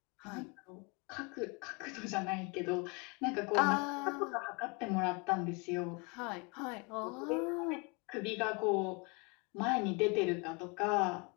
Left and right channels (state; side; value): quieter; right; 30.7 dB